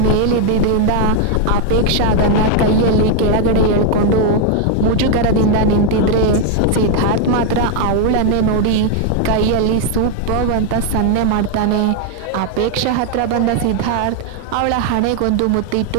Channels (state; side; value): different; both; correlation 0.01